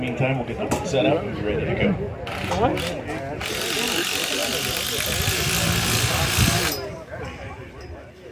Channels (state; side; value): identical; both; correlation 1.00